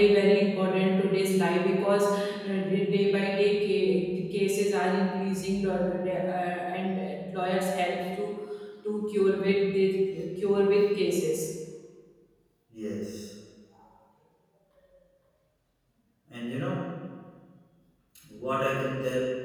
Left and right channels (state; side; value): identical; both; correlation 1.00